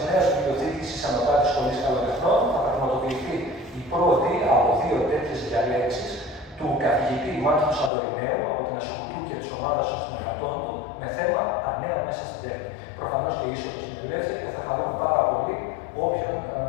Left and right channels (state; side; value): drops out; right; at 7.9 s